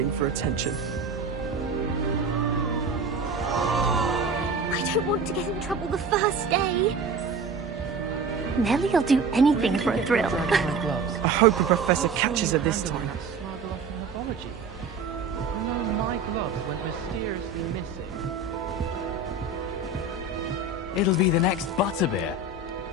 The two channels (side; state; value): left; quieter; 3.7 dB